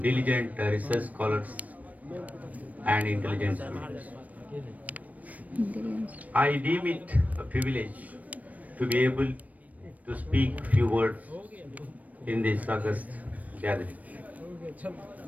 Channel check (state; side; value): late; left; 0.072 ms